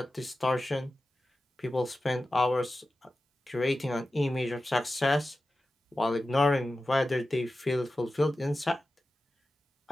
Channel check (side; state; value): both; normal; correlation 0.94